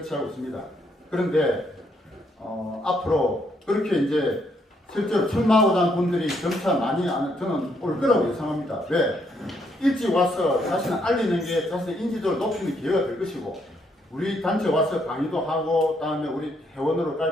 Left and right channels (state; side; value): normal; both; correlation 0.73